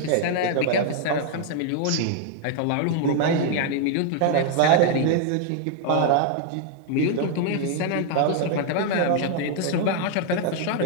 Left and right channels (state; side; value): different; both; correlation 0.00